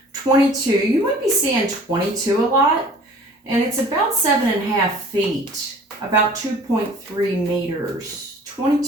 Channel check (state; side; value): normal; both; correlation 0.49